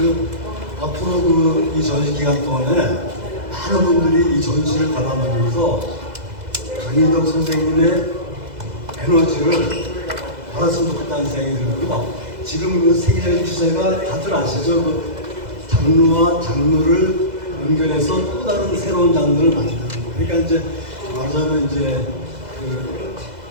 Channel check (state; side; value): late; left; 2.0 ms